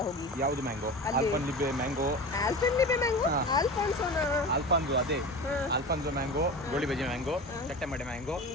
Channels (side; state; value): both; normal; correlation 0.31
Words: ಹೋಗಿ. ಯಾವುದು ಮ್ಯಾಂಗೋ? ಆಲ್ಫಾನ್ಲಿಬೆ ಮ್ಯಾಂಗೋ. ಆಲ್ಫಾನ್ಸೋ ಅದೇ Alfonso mango, goli baje mango, ಚಟ್ಟೆ ಮಡೆ mango,